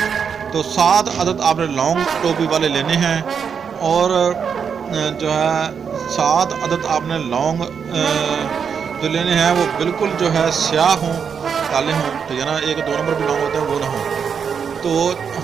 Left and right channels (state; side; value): quieter; left; 6.7 dB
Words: تو 7 عدد آپ نے لونگ ٹوپی والے لینے ہیں، اور جو ہے 7 عدد آپ نے لونگ جو لینے ہیں وہ بالکل جو ہے سیاہ ہوں، کالے ہوں، ٹھیک ہے نا؟ 1-2 نمبر بھی لونگ ہوتے ہیں وہ نہ ہوں۔ تو